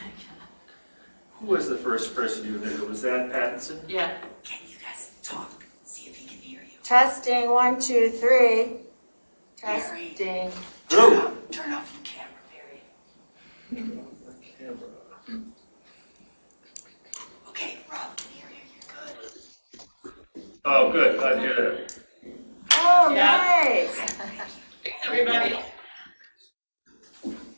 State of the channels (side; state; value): both; inverted; correlation -1.00